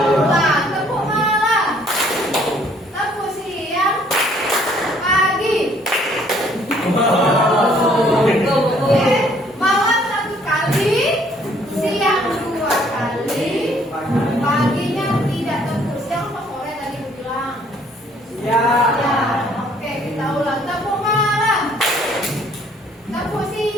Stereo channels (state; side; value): normal; both; correlation 0.62